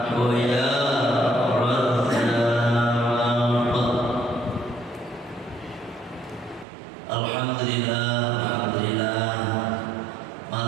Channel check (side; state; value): left; drops out; at 6.7 s